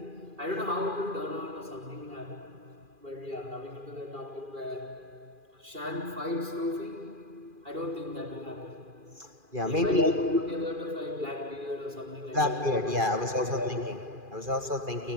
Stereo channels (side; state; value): left; late; 2.4 ms